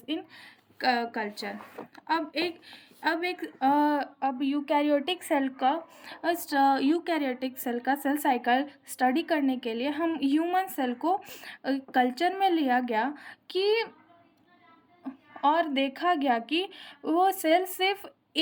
in culture. अब eukaryotic cell का cell cycle study करने के लिए हम human cell को culture में लिया गया कि और देखा गया कि वो सेल सिर्फ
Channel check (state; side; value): identical; both; correlation 1.00